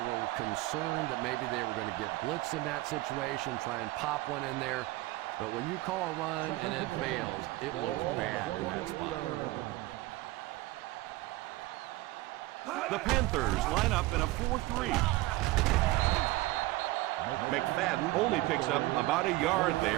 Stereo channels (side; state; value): left; quieter; 19.1 dB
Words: concerned that maybe they were going to get blitzed in that situation, try and pop one in there. But when you call a run and it fails, it looks bad in that spot. The Panthers line up in a 4-3. McFadden only picks up about a yard